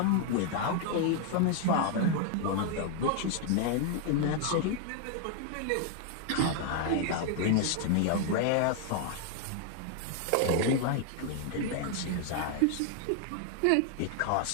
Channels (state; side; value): different; both; correlation 0.00